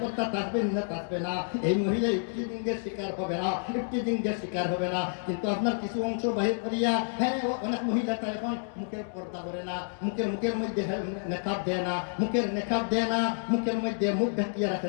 থাকবে না থাকবে না। এই মহিলা ইফতিজিংয়ের শিকার হবে না, ইফতিজিংয়ের শিকার হবে না। কিন্তু আপনার কিছু অংশ বাহির করিয়া, হ্যাঁ অনেক মহিলা এখন মুখের পর্দা করে না, মুখের মধ্যে নেকাব দেয় না, মুখের নেকাব দেয় না, মুখের মধ্যে মুখ ঢাকিয়ে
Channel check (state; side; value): silent; right; digital silence